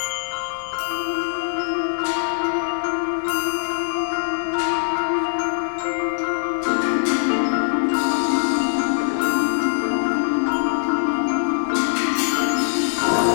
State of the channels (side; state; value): right; silent; digital silence